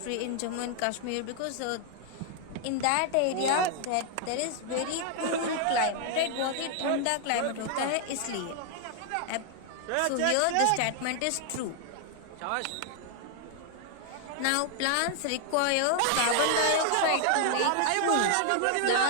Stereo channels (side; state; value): both; different; correlation 0.00